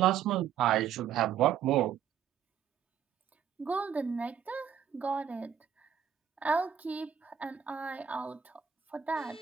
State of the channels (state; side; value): quieter; left; 8.6 dB